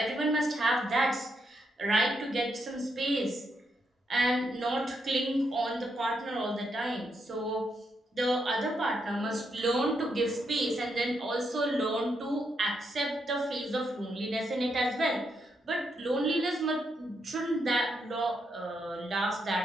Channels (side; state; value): both; normal; correlation 0.80